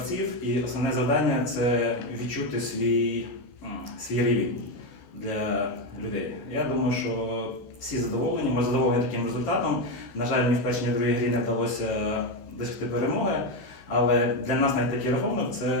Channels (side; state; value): right; late; 16 ms